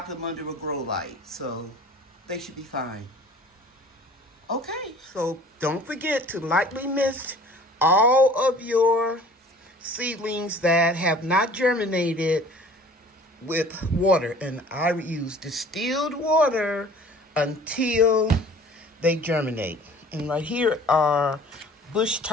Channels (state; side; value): normal; both; correlation 0.48